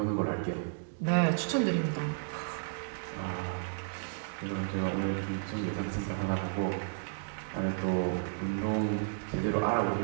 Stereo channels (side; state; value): left; silent; digital silence